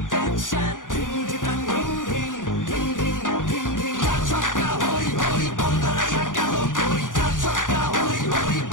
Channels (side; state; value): right; late; 0.88 ms